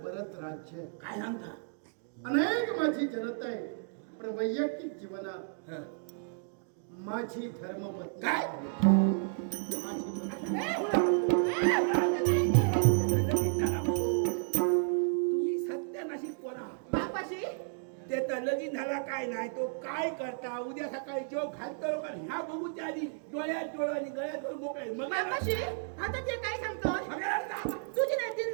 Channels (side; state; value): left; silent; digital silence